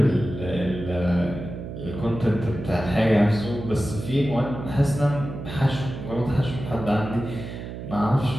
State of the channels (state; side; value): noise; right; hum, 9 dB below the sound